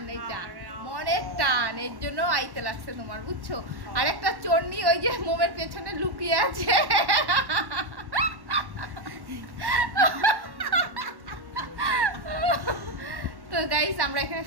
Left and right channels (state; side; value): late; left; 1.1 ms